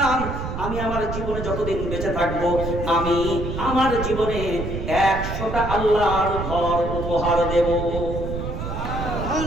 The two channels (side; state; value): right; noise; rumble, 5 dB below the sound